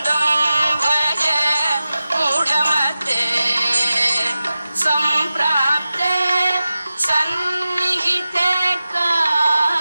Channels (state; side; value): inverted; both; correlation -0.94